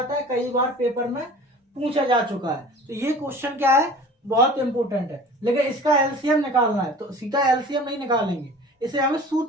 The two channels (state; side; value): normal; both; correlation 0.42